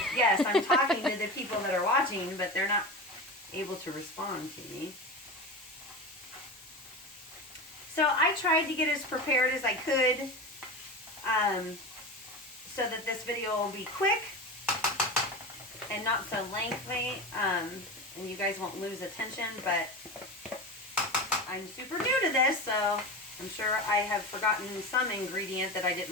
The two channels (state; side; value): normal; both; correlation 0.26